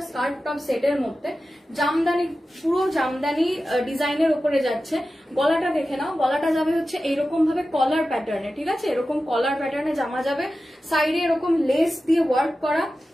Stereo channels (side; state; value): both; normal; correlation 0.94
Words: স্কার্ট টপ সেটের মধ্যে, জামদানি, পুরো জামদানি ডিজাইনের উপরে যাচ্ছে। গলাটা দেখে নাও, গলাটা যাবে হচ্ছে এইরকম ভাবে কলার প্যাটার্নে, ঠিক আছে? এরকম কলার প্যাটার্নে জামা যাবে, সাইডে এরকম লেস দিয়ে ওয়ার্ক করা,